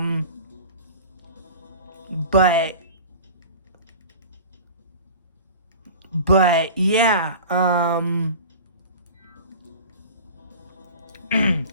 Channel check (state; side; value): inverted; both; correlation -0.37